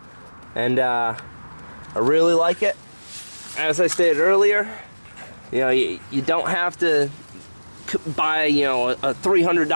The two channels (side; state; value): both; inverted; correlation -1.00